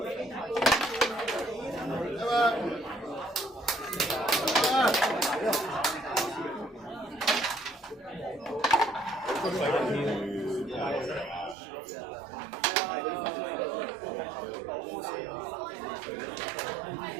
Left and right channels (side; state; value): left; drops out; at 11.6 s